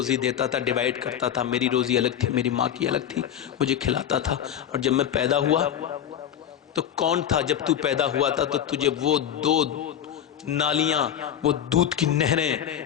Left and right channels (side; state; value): right; quieter; 9.9 dB